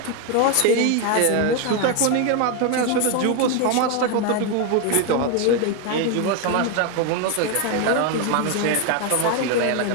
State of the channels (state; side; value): different; both; correlation 0.01